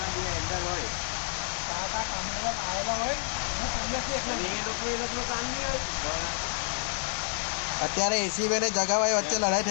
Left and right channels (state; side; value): silent; right; 57 dB below the other